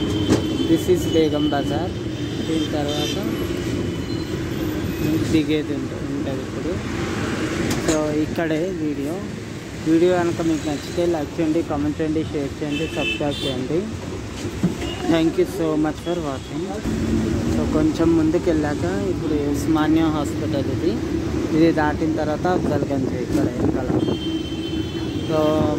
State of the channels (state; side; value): identical; both; correlation 1.00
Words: This is Begum Bazar. దీని తర్వాత దిగేది ఉంటుంది ఇప్పుడు. సో ఇక్కడే వీడియో కనుక మీకు నచ్చితే లైక్ చేయండి, కామెంట్ చేయండి, షేర్ చేయండి, సబ్స్క్రైబ్ చేయండి. Thank you so much for watching. So కొంచెం ముందుకు వెళ్ళాక ఇప్పుడు ఉస్మానియా హాస్పిటల్ ఇది దాటిన తర్వాత అఫ్జల్గంజ్ ఇక్కడ వెనకాల. तो